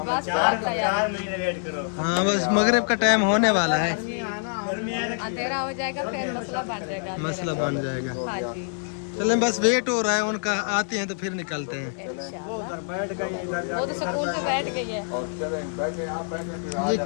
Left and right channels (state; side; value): silent; right; digital silence